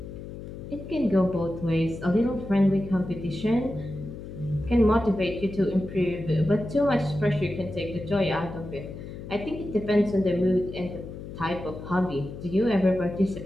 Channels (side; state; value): left; noise; hum, 11 dB below the sound